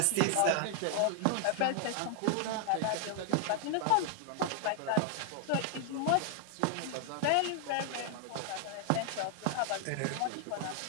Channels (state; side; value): different; both; correlation 0.00